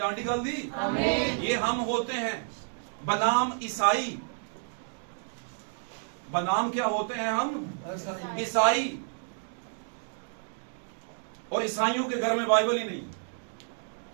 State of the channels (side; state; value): left; silent; digital silence